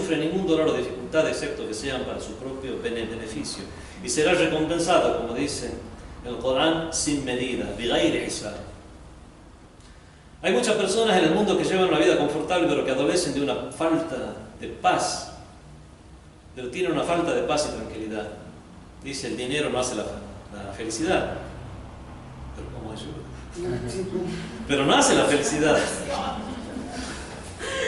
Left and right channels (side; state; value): both; identical; correlation 1.00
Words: ningún dolor o dificultad excepto que sean para su propio beneficio. Y será recompensada, como dice el Corán, sin medida, bighairi hisab. Hay muchas personas en el mundo que llevan una vida confortable pero que adolecen de una falta de paz. Pero tienen una falta de paz y tranquilidad. Dice, el dinero no hace la felicidad. Pero ¿cómo ayuda? Pero no hace la felicidad.